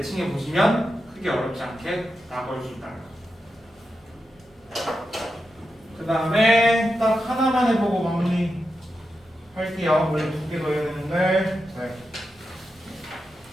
보시면 크게 어렵지 않게 나올 수 있다는 거. 그 다음에 딱 하나만 해보고 마무리 할게요. 원래 2개 더 해야 되는데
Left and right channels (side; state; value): both; normal; correlation 0.88